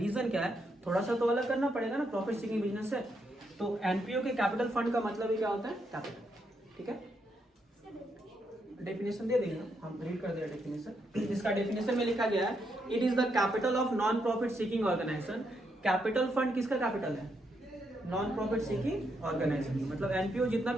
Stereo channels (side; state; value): both; normal; correlation 0.79